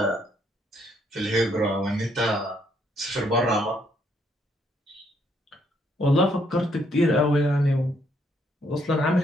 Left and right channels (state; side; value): normal; both; correlation 0.71